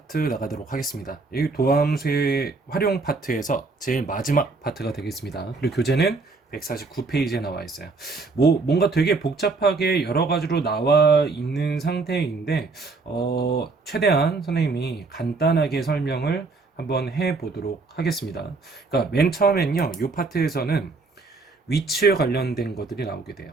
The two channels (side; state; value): left; quieter; 3.9 dB